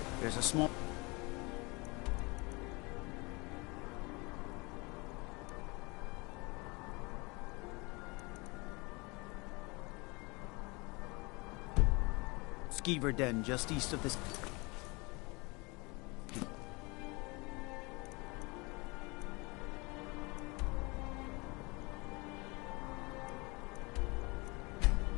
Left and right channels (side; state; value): right; quieter; 26.7 dB